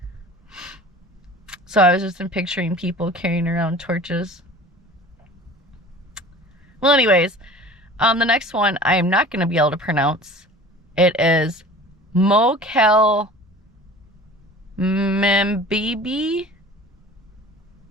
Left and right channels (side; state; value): both; normal; correlation 0.42